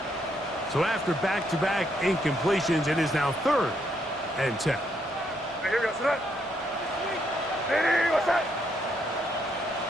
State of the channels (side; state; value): both; normal; correlation 0.75